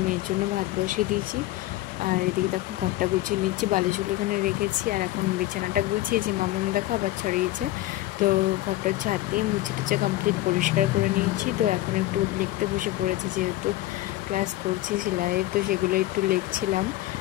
মেয়ের জন্য ভাত বসিয়ে দিয়েছি, আর এদিকে দেখো ঘরটা গুছিয়ে নিচ্ছি, বালিশগুলো এখানে রেখেছি। আর এখন বিছানাটা গুছিয়েছি, মামাম দেখো আবার ছড়িয়েছে। তো ঘরটা ঝাড় দিয়ে মুছে টুচে কমপ্লিট পরিষ্কার করে নিয়েছি। তো এখন একটু লিখতে বসে পড়েছি, যেহেতু ক্লাস করছি সেলাইয়ের, তো সেগুলো একটু লিখছিলাম।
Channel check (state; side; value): quieter; right; 16.1 dB